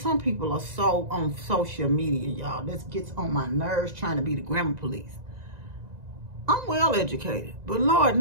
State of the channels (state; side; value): late; left; 1.9 ms